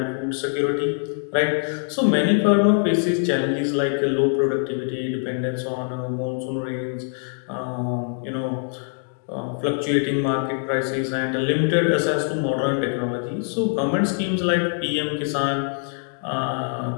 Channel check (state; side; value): silent; right; digital silence